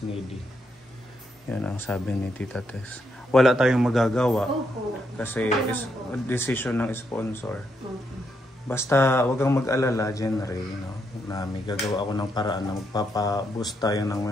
needy. Yan ang sabi ni Tita Tess. Wala tayong magagawa Opo. kasi decision ng sponsor. Okay. Basta wag kang mag-alala, Jenry, no? Na may gagawa ako ng paraan na magpapa-boost tayo ng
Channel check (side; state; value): both; normal; correlation 0.79